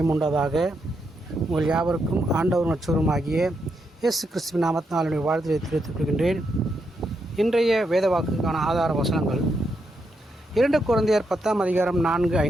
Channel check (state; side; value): normal; both; correlation 0.81